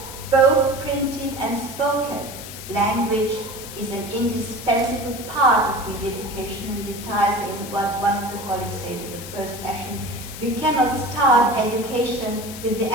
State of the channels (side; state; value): left; noise; hiss, 12 dB below the sound